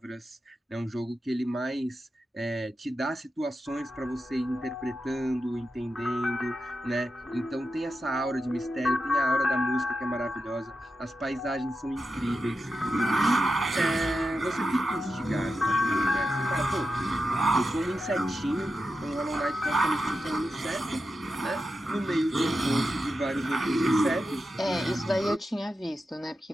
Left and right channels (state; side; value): normal; both; correlation 0.90